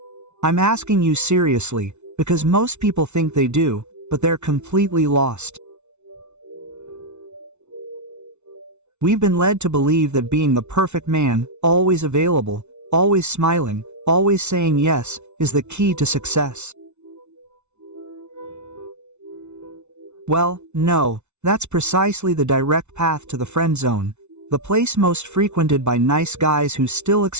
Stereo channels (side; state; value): left; late; 0.82 ms